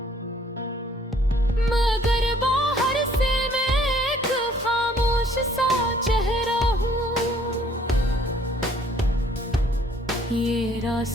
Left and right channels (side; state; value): both; normal; correlation 0.61